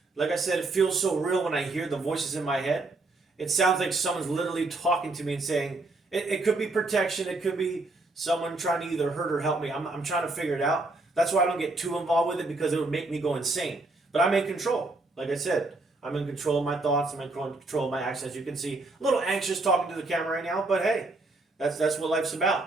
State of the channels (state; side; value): quieter; left; 3.2 dB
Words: Like I said, it feels so real when I hear the voices in my head. It sounds like someone's literally talking to me and saying, it could be protection, it could be someone trying to either hurt or help me. I'm trying to figure it out. That's why I don't get too involved with it, because it would make me go insane. But I'm in control. Like I said, I'm in control of my thoughts. I'm in control of my actions. As you can see, a little anxious talking to the camera right now, but hey, that's what life's